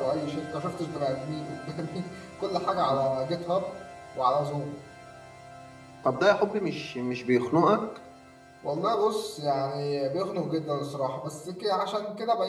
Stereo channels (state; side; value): identical; both; correlation 1.00